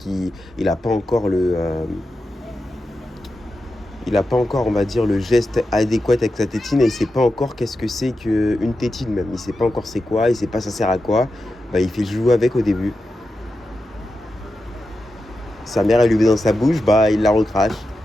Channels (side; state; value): both; normal; correlation 0.90